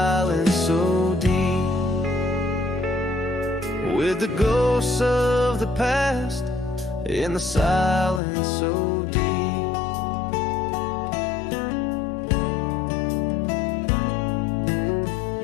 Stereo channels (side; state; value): right; drops out; at 8.2 s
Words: so deep. With the ghosts of the past in the silence so deep.